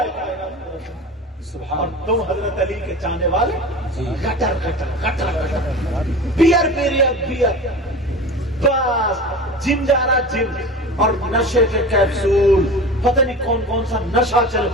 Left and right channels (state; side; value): normal; both; correlation 0.33